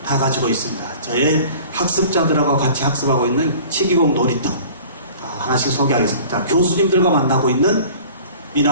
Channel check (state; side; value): inverted; both; correlation -0.45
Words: 다 가지고 있습니다. 저의 학습자들하고 같이 학습하고 있는 치기공 놀이터 하나씩 소개하겠습니다. 교수님들과 만나고 있는